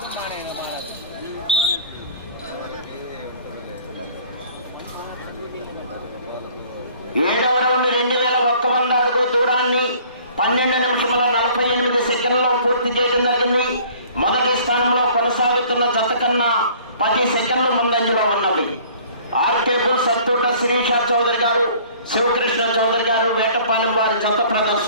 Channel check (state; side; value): inverted; both; correlation -0.52